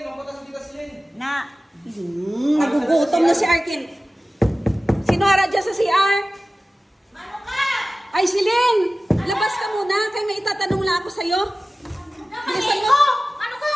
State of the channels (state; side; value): normal; both; correlation 0.96